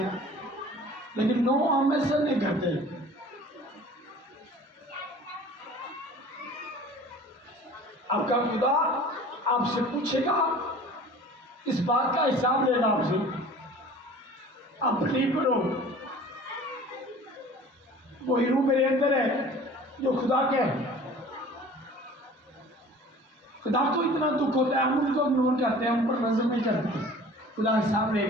लेकिन नो हम ऐसा नहीं करते। आपका खुदा आपसे पूछेगा, इस बात का हिसाब लेना आपसे। आप बिलीव करो, वही रूह मेरे अंदर है जो खुदा के है। खुदा को इतना दुख होता है, हम उनको इग्नोर करते हैं, हम पर नजर नहीं करते। खुदा हिसाब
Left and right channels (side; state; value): both; normal; correlation 0.45